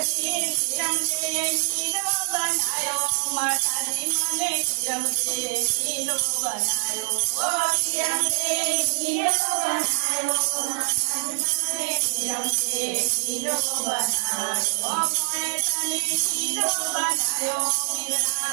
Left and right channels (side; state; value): left; silent; digital silence